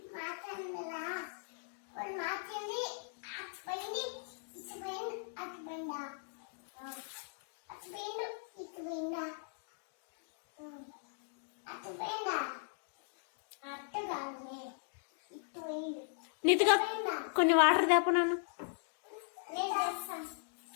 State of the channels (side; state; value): right; silent; digital silence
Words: నీతిగా కొన్ని వాటర్ తేప నాన్న